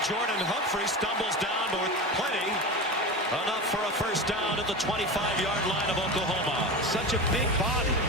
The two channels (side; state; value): both; normal; correlation 0.25